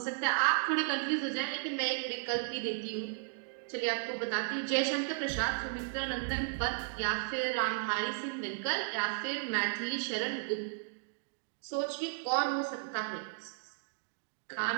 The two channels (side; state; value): left; silent; digital silence